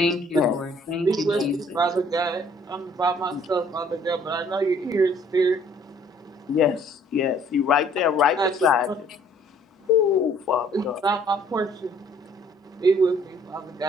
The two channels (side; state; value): both; normal; correlation 0.59